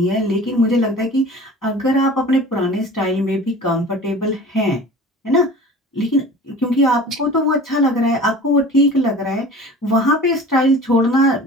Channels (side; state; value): both; normal; correlation 0.40